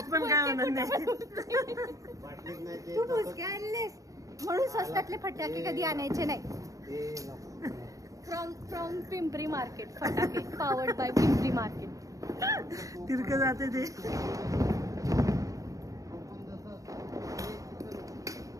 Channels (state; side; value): late; left; 0.16 ms